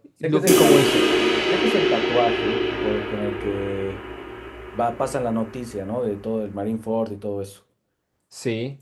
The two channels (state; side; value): identical; both; correlation 1.00